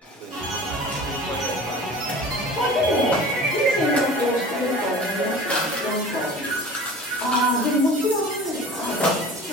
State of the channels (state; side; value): normal; both; correlation 0.41